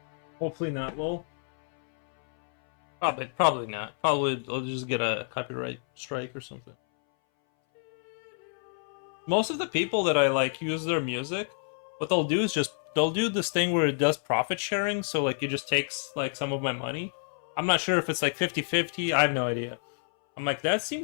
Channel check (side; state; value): right; silent; 59 dB below the other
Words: Hopefully not, lol. Probably not. Probably I'll just get a copyright strike or something. Most of the people that I like use their music, what they'll do is they'll do this thing where it does profit sharing, so like it just takes like some of my money. I'm not sure if it's like 50-50, I have no idea. I'm like, that